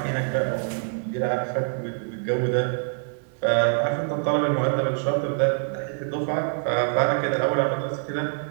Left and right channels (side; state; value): left; silent; digital silence